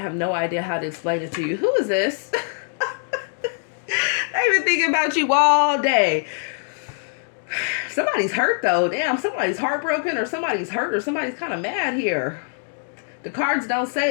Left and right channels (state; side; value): silent; right; digital silence